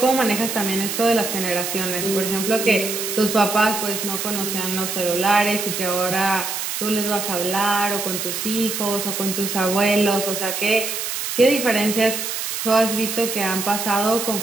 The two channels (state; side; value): noise; right; hiss, 4 dB below the sound